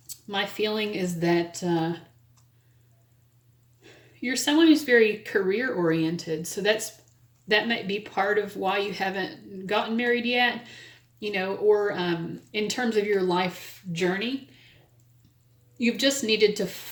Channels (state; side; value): identical; both; correlation 1.00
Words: My feeling is that you're someone who's very career-oriented. So that might be part of why you haven't gotten married yet, or in terms of your life journey. You've just needed to